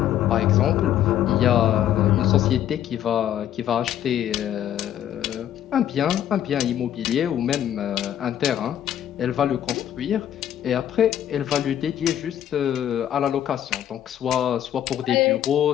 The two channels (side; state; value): right; quieter; 11.0 dB